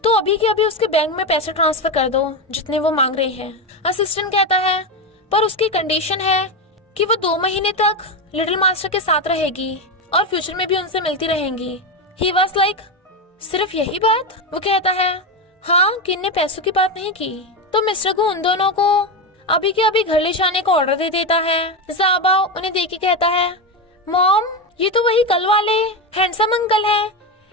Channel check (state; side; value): normal; both; correlation 0.14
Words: तो अभी के अभी उसके बैंक में पैसे ट्रांसफर कर दो जितने वो मांग रहे हैं। असिस्टेंट कहता है, पर उसकी कंडीशन है कि वो 2 महीने तक लिटिल मास्टर के साथ रहेगी और फ्यूचर में भी उनसे मिलती रहेंगी। ही वाज लाइक, सिर्फ यही बात? वो कहता है, हाँ, किन ने पैसों की बात नहीं की। तो मिस्टर को उन दोनों को अभी के अभी घर ले जाने का ऑर्डर दे देता है। ज़ाओबाओ उन्हें देख के कहता है, मॉम ये तो वही कल वाले हैंडसम अंकल हैं,